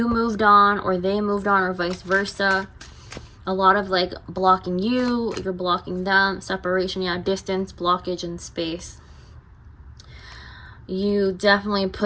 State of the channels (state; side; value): identical; both; correlation 1.00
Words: moved on or they moved on or vice versa. A lot of like blocking you, you're blocking them, separation, yeah, distance, blockage, and space. You definitely